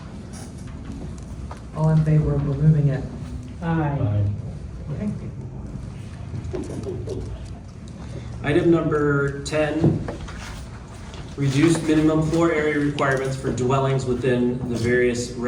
All in favor of removing it? Aye. Okay. Item number 10, reduced minimum floor area requirements for dwellings within the various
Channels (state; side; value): identical; both; correlation 1.00